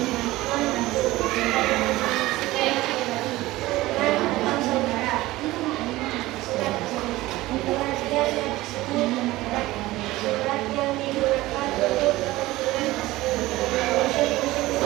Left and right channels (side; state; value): left; quieter; 18.1 dB